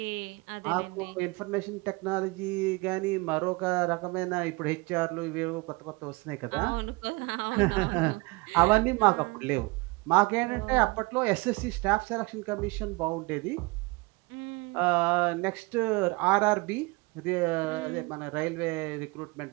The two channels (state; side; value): quieter; left; 25.7 dB